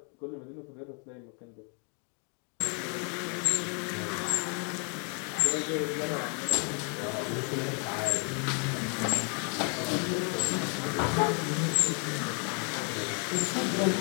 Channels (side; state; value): right; quieter; 39.1 dB